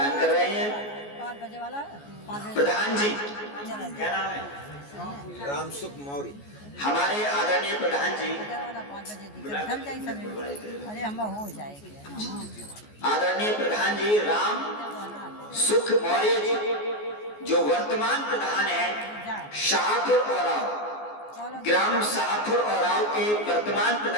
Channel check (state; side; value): late; right; 14 ms